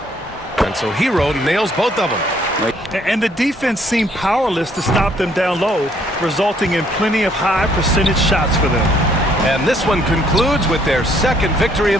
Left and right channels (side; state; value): both; normal; correlation 0.66